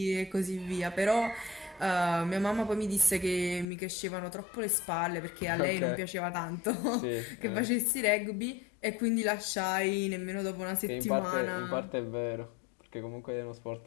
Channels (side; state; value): right; drops out; at 3.7 s